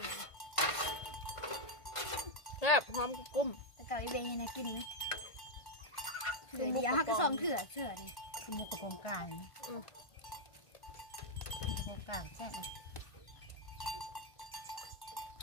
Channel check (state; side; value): late; right; 1.5 ms